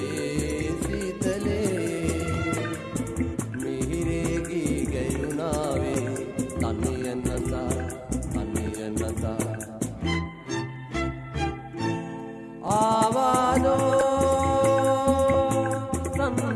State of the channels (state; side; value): identical; both; correlation 1.00